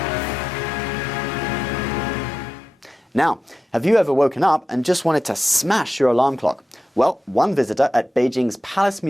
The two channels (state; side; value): normal; both; correlation 0.91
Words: Now, have you ever woken up and just wanted to smash your alarm clock? Well, one visitor at Beijing's Palace